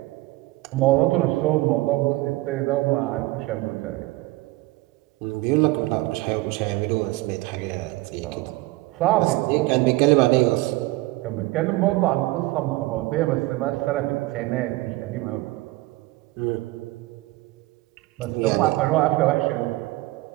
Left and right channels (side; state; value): left; quieter; 19.9 dB